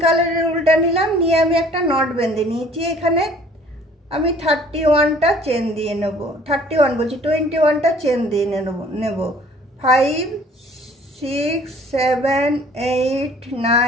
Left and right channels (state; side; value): normal; both; correlation 0.54